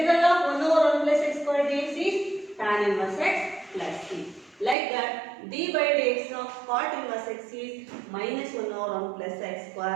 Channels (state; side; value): drops out; left; at 4.8 s